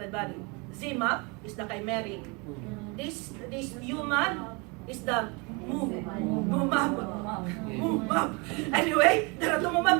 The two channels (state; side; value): quieter; left; 29.6 dB